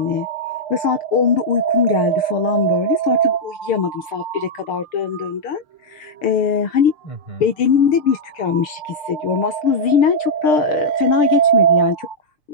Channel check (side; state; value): right; late; 6.7 ms